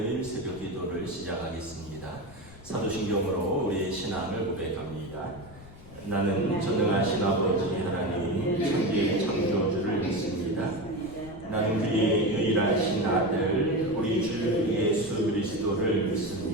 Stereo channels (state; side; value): noise; left; rumble, 19 dB below the sound